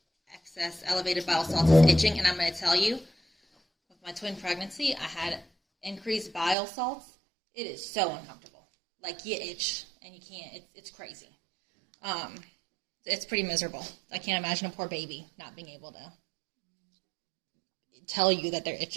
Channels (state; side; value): drops out; left; at 6.6 s